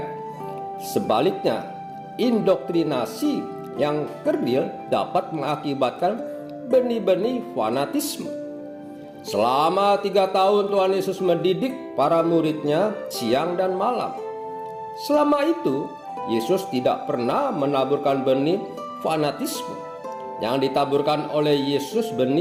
Sebaliknya, indoktrinasi yang kerdil dapat mengakibatkan benih-benih fanatisme. Selama 3 tahun Tuhan Yesus mendidik para muridnya siang dan malam. Selama itu, Yesus tidak pernah menaburkan benih fanatisme. Yang ditaburkan oleh Yesus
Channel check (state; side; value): identical; both; correlation 1.00